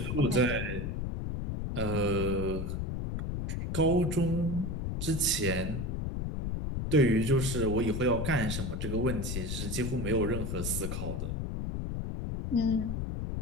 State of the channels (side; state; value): left; noise; rumble, 3 dB below the sound